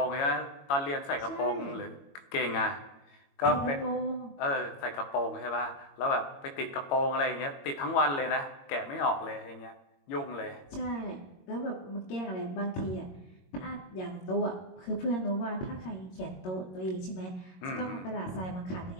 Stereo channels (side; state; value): right; late; 22 ms